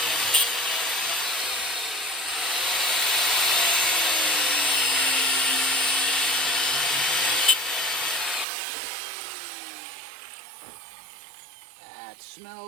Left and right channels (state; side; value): drops out; left; at 8.5 s